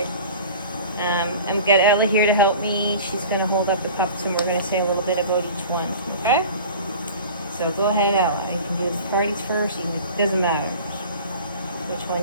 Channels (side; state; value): both; inverted; correlation -0.40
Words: I've got Ella here to help me. She's going to hold up the pups and we're going to say a little bit about each one. Okay? So, go ahead, Ella. You can do the parties first. It doesn't matter which one